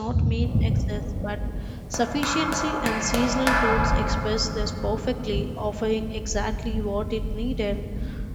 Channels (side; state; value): both; identical; correlation 1.00